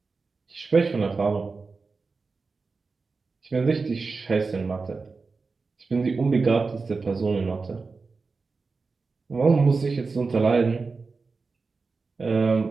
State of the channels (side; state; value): left; quieter; 4.3 dB